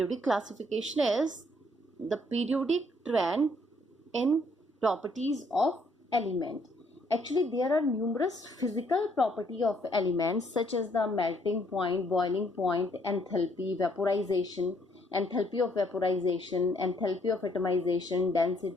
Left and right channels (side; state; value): both; normal; correlation 0.67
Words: classification is the periodic trend in properties of element. Actually, there are numerous physical property of elements such as the melting point, boiling point, enthalpy, vaporization, enthalpy of vaporization, enthalpy of atomization,